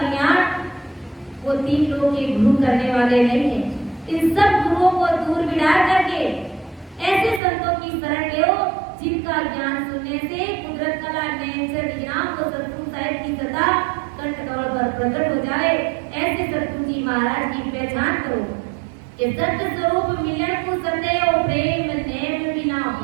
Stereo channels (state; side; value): drops out; left; at 7.4 s